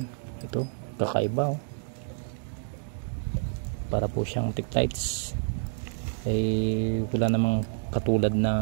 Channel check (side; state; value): left; silent; digital silence